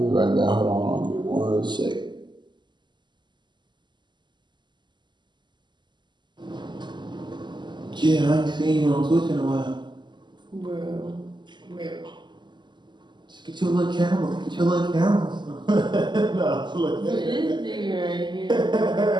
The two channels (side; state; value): left; late; 0.22 ms